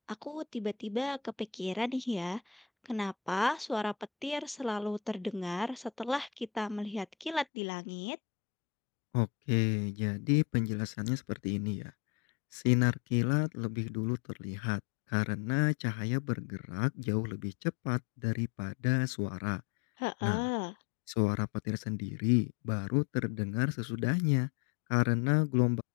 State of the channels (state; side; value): drops out; right; at 7.5 s